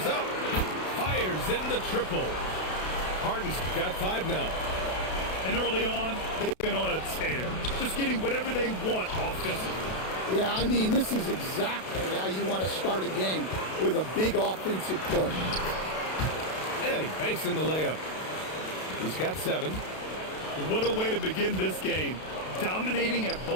up. Fires in the triple. Harden's got 5 now. And early on, they've been on a tear. Just getting whatever they want offensively. Yeah, I mean, this is exactly how you want to start a game, with a big offensive push. And he banks in the layup. He's got 7. What a way to begin this game. Dominating at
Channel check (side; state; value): right; late; 32 ms